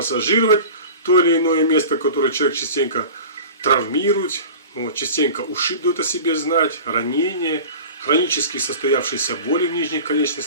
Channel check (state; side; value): inverted; both; correlation -0.37